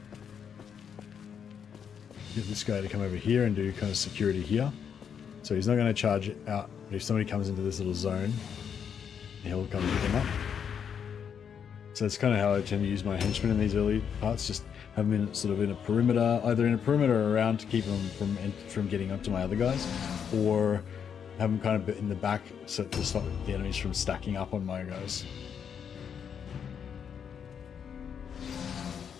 Get this guy to come over here and do kind of security here. So he's not going to charge out, but if somebody comes into this little zone, he'll come pick him up. So that's kind of how I tend to use my henchmen in these early parts, just have them in, sort of in a perimeter, either in a perimeter or around to keep them from getting up to my other guys, or have them kind of in the back so to stop the enemies from stacking up on my guys.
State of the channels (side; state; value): right; quieter; 7.6 dB